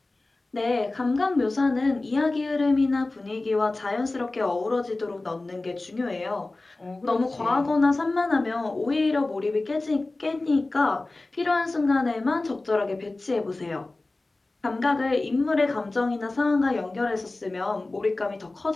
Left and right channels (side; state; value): right; quieter; 3.1 dB